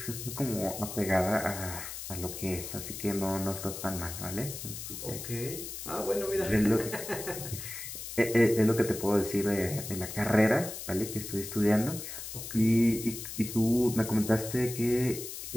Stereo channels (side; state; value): left; noise; hiss, 8 dB below the sound